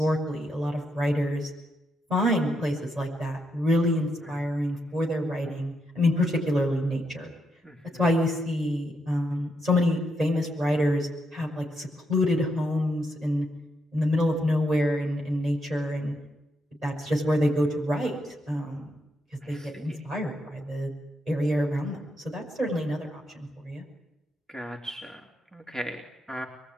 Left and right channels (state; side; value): normal; both; correlation 0.81